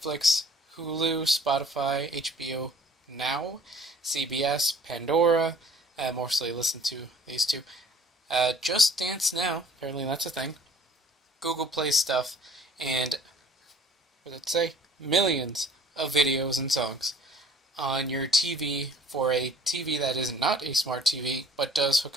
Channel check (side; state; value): both; normal; correlation 0.52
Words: Hulu, Spotify, HBO Now, CBS, Pandora. I mostly listen to these two. Just Dance Now, apparently that's a thing. Google Play stuff, and what did it say? Millions of videos and songs on your TV for a TV that is not a smart TV, but does hook